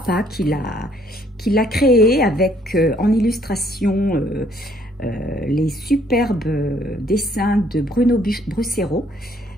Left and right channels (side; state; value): both; normal; correlation 0.65